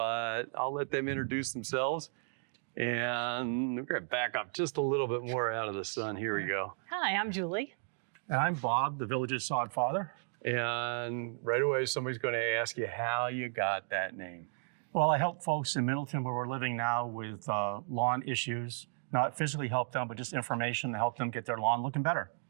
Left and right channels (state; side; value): silent; left; digital silence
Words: I'll let them introduce themselves. And we're gonna back up just a little bit more out of the sun. Here we go. Hi, I'm Julie. And I'm Bob, the Villages sod father. And right away, somebody's going to ask you how you got that name. Well, I help folks in Middleton where we're living now with lawn issues, not physically help them, but just information to help them get their lawn looking better.